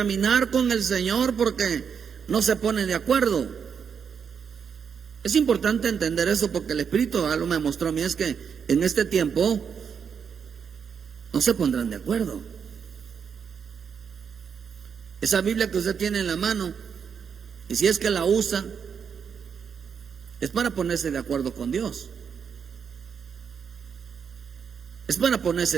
con el Señor porque no se pone de acuerdo. Es importante entender eso, porque el Espíritu algo me mostró a mí, es que en este tiempo no se pondrán de acuerdo. Esa Biblia que usted tiene en la mano, y si es que la usa, es para ponerse de acuerdo con Dios. Es para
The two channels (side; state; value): left; quieter; 6.9 dB